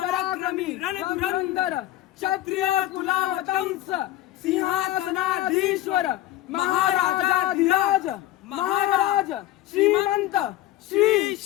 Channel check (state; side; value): quieter; right; 14.6 dB